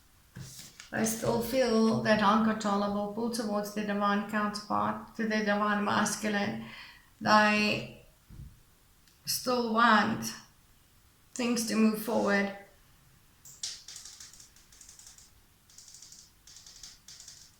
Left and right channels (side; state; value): both; identical; correlation 1.00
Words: They still feel that uncontrollable pull towards their divine counterpart, to their divine masculine. They still want things to move forward.